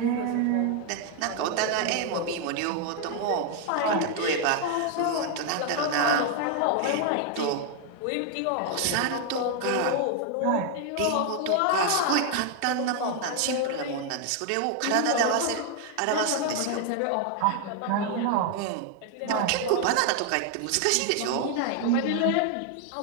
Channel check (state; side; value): different; both; correlation 0.00